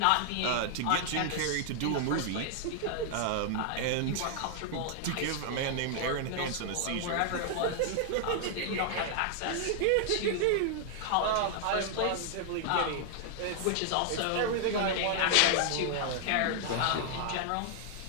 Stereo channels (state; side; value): different; both; correlation 0.00